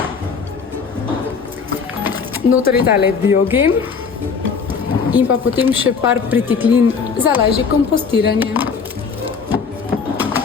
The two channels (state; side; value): quieter; right; 5.6 dB